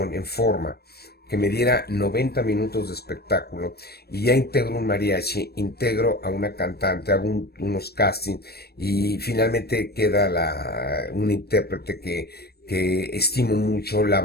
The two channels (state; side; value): late; right; 0.47 ms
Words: en forma que me diera 90 minutos de espectáculo y ya integro un mariachi, integro a una cantante, hago unos castings y finalmente queda una intérprete que estimo mucho, la